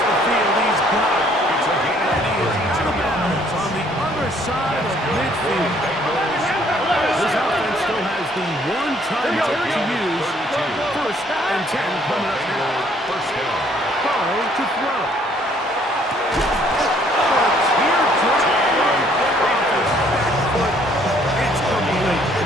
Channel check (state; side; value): normal; both; correlation 0.63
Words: the field, he's got it. And he is out of bounds on the other side of midfield. This offense still has the one timeout to use. First and 10 coming up now. Burrow to throw. It's complete.